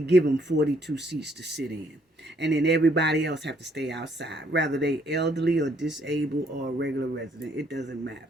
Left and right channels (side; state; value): both; normal; correlation 0.68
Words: give them 42 seats to sit in. And then everybody else have to stay outside, whether they elderly or disabled or a regular resident. It doesn't matter.